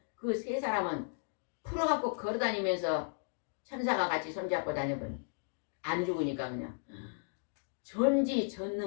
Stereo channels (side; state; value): right; silent; digital silence